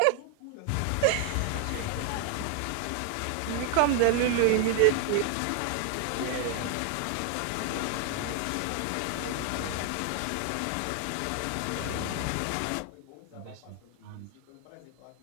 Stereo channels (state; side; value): different; both; correlation 0.00